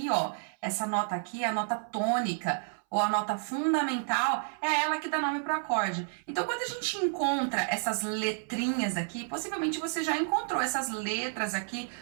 ó, essa nota aqui é a nota tônica, ou a nota fundamental, é ela que dá nome pro acorde. Então, quando a gente encontra essas letrinhas aqui, possivelmente você já encontrou essas letras aqui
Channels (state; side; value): silent; left; 57 dB below the other